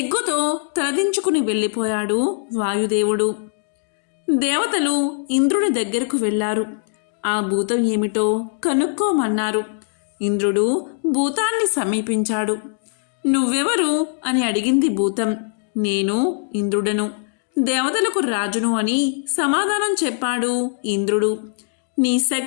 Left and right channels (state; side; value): silent; right; digital silence